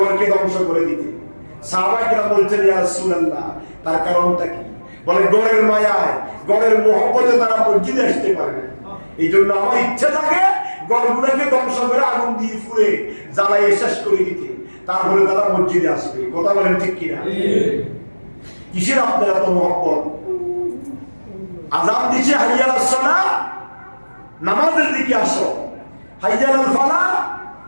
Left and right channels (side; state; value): both; inverted; correlation -1.00